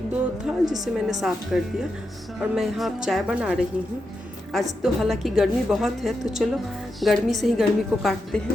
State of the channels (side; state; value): both; normal; correlation 0.86